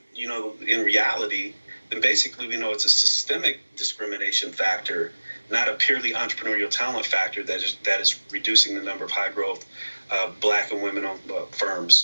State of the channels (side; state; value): both; inverted; correlation -1.00